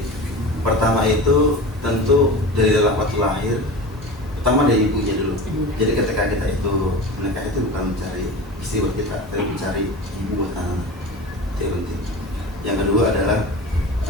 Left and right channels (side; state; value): both; normal; correlation 0.32